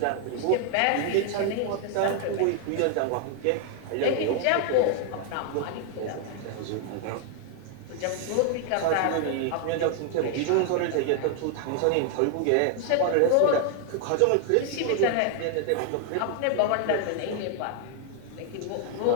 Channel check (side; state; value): both; different; correlation 0.00